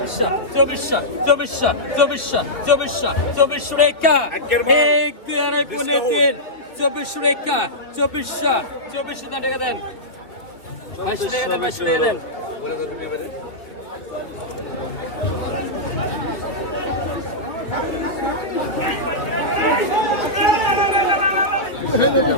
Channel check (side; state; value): right; late; 2.8 ms